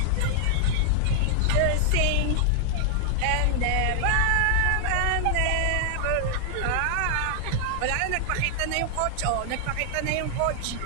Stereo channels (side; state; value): both; different; correlation 0.00